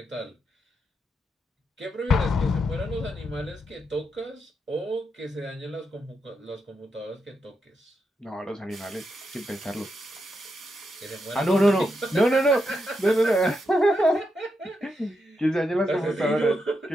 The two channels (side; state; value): both; normal; correlation 0.84